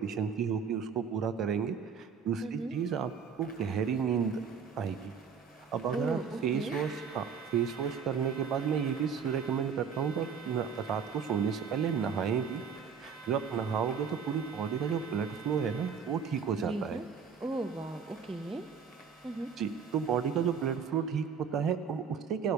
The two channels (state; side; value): quieter; left; 6.5 dB